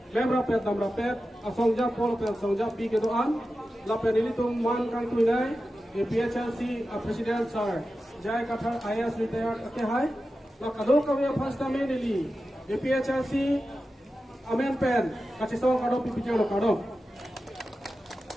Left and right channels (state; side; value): normal; both; correlation 0.92